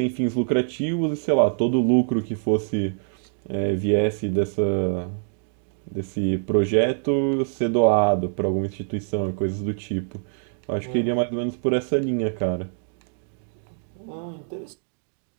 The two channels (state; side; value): silent; left; digital silence